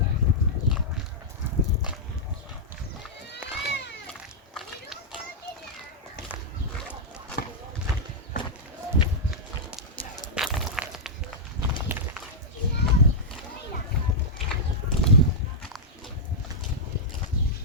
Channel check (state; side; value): normal; both; correlation -0.09